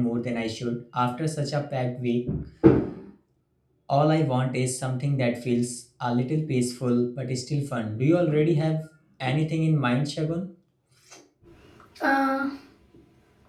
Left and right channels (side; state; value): both; identical; correlation 1.00